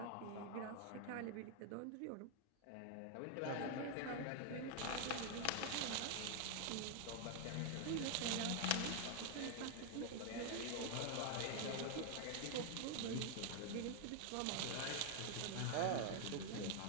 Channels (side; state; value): both; different; correlation 0.00